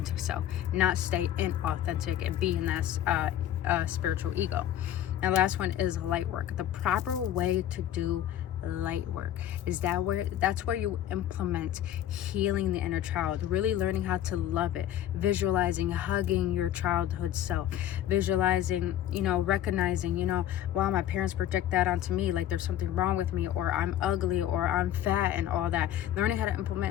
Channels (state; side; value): quieter; right; 11.6 dB